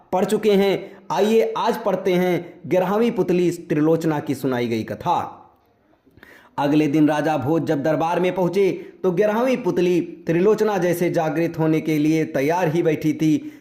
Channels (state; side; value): identical; both; correlation 1.00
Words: पढ़ चुके हैं। आइए आज पढ़ते हैं 11वीं पुतली त्रिलोचना की सुनाई गई कथा। अगले दिन राजा भोज जब दरबार में पहुंचे तो 11वीं पुतली त्रिलोचना जैसे जागृत होने के लिए तैयार ही बैठी थी।